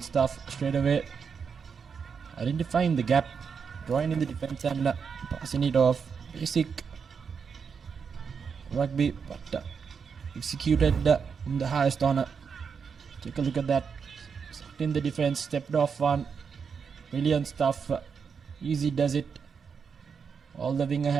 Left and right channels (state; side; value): quieter; left; 6.2 dB